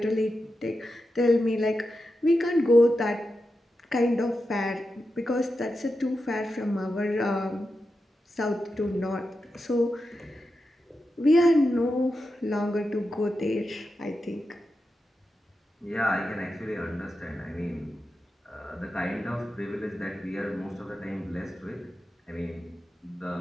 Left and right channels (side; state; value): both; normal; correlation 0.89